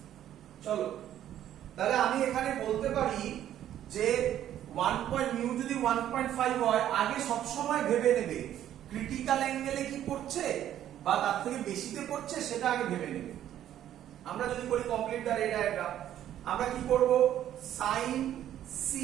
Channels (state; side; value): quieter; left; 11.4 dB